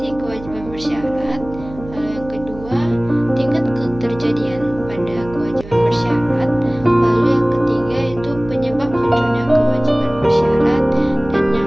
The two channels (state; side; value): noise; right; hum, 16 dB below the sound